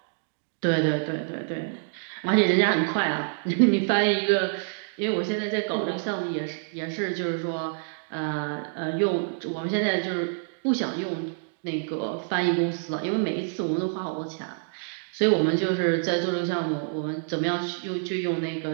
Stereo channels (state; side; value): silent; left; digital silence